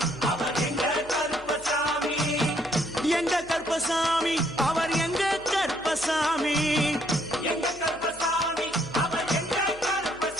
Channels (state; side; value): noise; left; hum, 23 dB below the sound